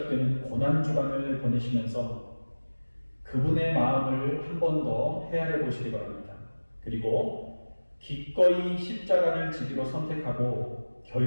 고난주간을 보내시면서 그분의 마음을 한 번 더 헤아려 보시기 바랍니다. 그리고 기꺼이 십자가를 지기로 선택하고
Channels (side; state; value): both; inverted; correlation -1.00